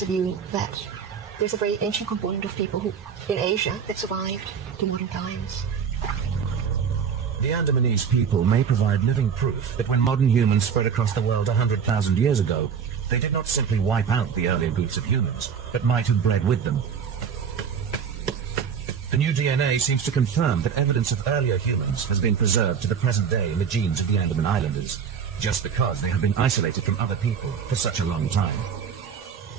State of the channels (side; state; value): left; quieter; 7.1 dB